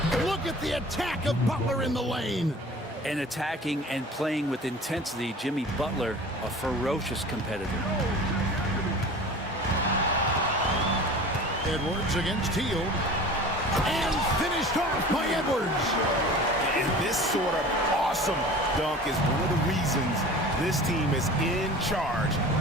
Look at the attack of Butler in the lane. And attacking and playing with intensity, Jimmy Butler, a ferocious competitor. Edwards against Hield. And finished off by Edwards. And this sort of awesome dunk is one of the reasons this team is in charge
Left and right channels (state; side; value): normal; both; correlation 0.40